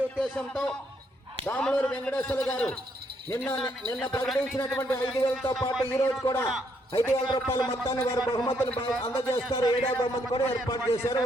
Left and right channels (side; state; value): both; normal; correlation 0.73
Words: ఉద్దేశంతో దాములూరు వెంకటేశ్వర గారు నిన్న ప్రకటించినటువంటి 5,000తో పాటు ఈ రోజు కూడా 5,000 రూపాయల మొత్తాన్ని వారు బహుమతులు అందజేస్తారు. 7వ బహుమతి కూడా ఏర్పాటు చేశారు.